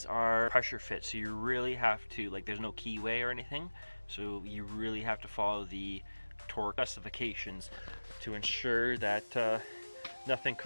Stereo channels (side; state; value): both; inverted; correlation -1.00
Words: are pressure fit, so you really have to, like, there's no keyway or anything, so you really have to follow the torque specifications to ensure that nothing